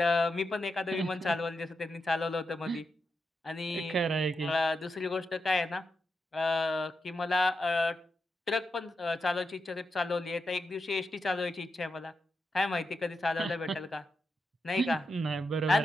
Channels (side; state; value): both; normal; correlation 0.87